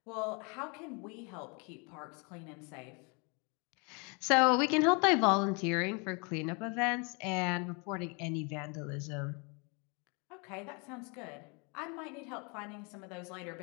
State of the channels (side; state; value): right; quieter; 32.7 dB